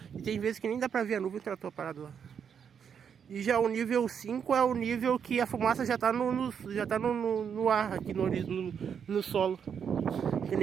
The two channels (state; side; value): quieter; left; 7.4 dB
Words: E tem vezes que nem dá pra ver a nuvem, o trator parado lá. E já o nível 5 é o nível que a fumaça já tá no ar, aqui no solo. Tem